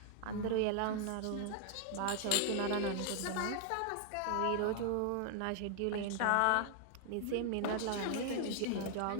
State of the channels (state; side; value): different; both; correlation 0.00